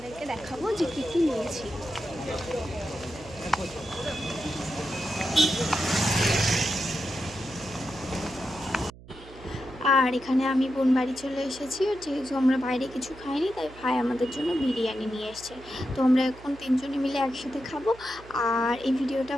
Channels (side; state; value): right; noise; hum, 19 dB below the sound